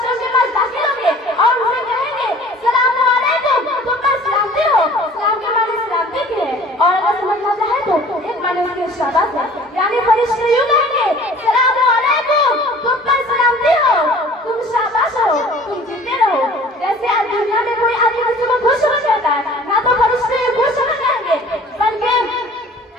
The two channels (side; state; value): both; normal; correlation 0.48